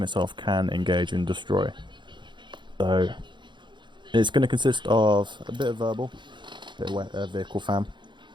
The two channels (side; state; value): left; late; 0.23 ms